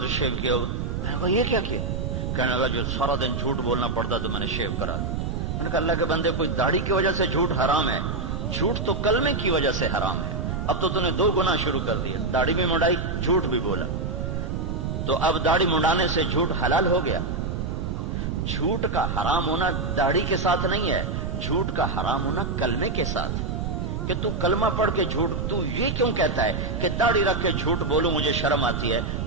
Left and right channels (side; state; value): right; noise; rumble, 2 dB below the sound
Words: شیو کیا ہوا۔ میں نے کہا یہ کیا کیا؟ کہنے لگا جو سارا دن جھوٹ بولنا پڑتا تو میں نے شیو کرا دیا۔ میں نے کہا اللہ کے بندے، کوئی داڑھی کی وجہ سے جھوٹ حرام ہے؟ جھوٹ تو کلمے کی وجہ سے حرام ہے۔ اب تو نے 2 گناہ شروع کر دیے، داڑھی بھی منڈائی، جھوٹ بھی بولا، تو اب داڑھی منڈانے سے جھوٹ حلال ہو گیا۔ جھوٹ کا حرام ہونا داڑھی کے ساتھ نہیں ہے، جھوٹ کا حرام ہونا کلمے کے ساتھ، کہ تو کلمہ پڑھ کے جھوٹ، تو یہ کیوں کہتا ہے کہ داڑھی رکھ کے جھوٹ بولوں مجھے شرم آتی ہے؟